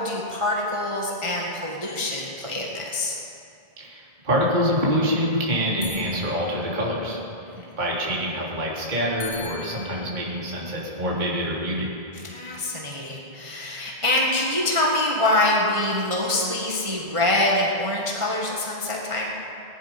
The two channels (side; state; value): left; late; 1.5 ms